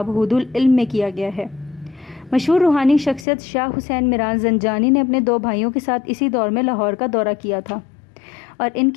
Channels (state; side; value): drops out; right; at 3.2 s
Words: حود العلم میں کیا گیا ہے۔ مشہور روحانی شخصیت شاہ حسین میران زنجانی نے اپنے 2 بھائیوں کے ساتھ اسی دور میں لاہور کا دورہ کیا تھا، اور ان